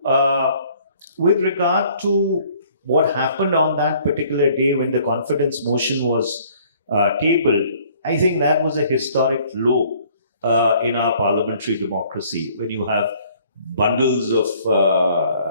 with regard to what happened on that particular day when the confidence motion was tabled, I think that was a historic low in our parliamentary democracy, when you have bundles of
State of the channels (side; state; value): both; inverted; correlation -0.58